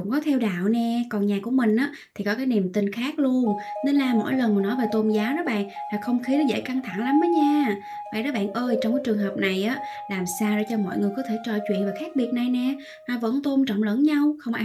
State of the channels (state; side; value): identical; both; correlation 1.00